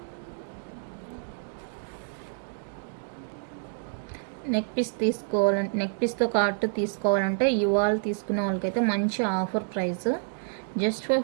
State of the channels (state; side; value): silent; left; digital silence